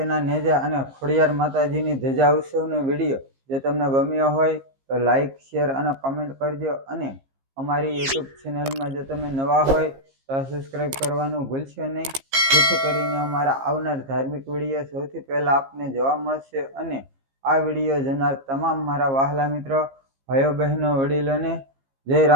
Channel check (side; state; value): left; late; 15 ms